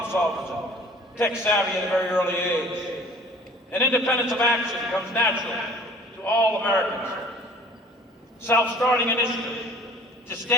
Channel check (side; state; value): both; normal; correlation 0.49